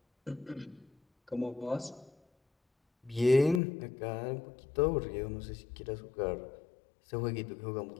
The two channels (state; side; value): drops out; right; at 3.6 s